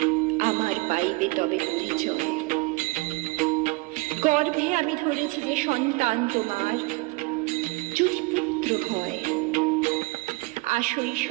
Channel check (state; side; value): quieter; left; 25.3 dB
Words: আমার পাইবে তবে পরিচয়। গর্ভে আমি ধরেছি যে সন্তান তোমার, যদি পুত্র হয়, আসই